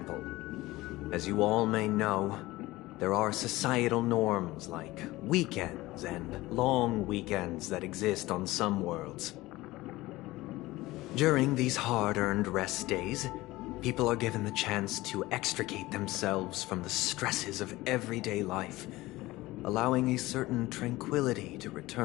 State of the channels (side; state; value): right; quieter; 18.9 dB